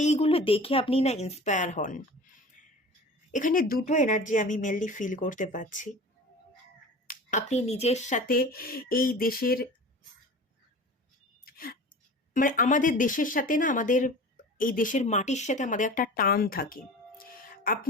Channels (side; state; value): both; normal; correlation 0.38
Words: দেখে আপনি না ইন্সপায়ার হন। এখানে দুটো এনার্জি আমি মেনলি ফিল করতে পারছি। আপনি নিজের সাথে এই দেশের, মানে আমাদের দেশের সাথে না, আমাদের এই দেশের মাটির সাথে আমাদের একটা টান থাকে।